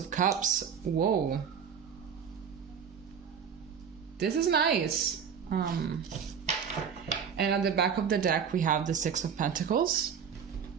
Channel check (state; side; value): quieter; left; 7.2 dB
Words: Cups. Whoa. This is nice. And at the back of the deck, we have the Six of Pentacles.